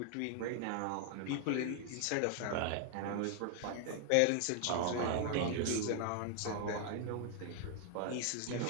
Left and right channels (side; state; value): both; different; correlation 0.00